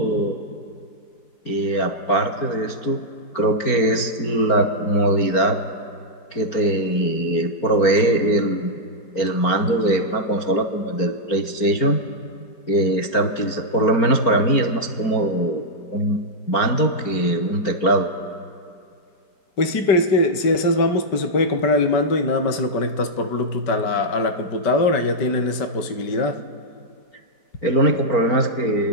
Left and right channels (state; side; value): late; right; 4.4 ms